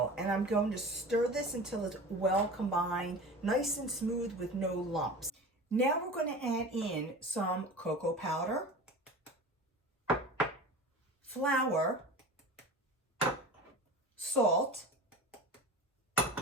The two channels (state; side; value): normal; both; correlation 0.34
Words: and I'm going to stir this until it's well combined, nice and smooth with no lumps. Now we're going to add in some cocoa powder, flour, salt,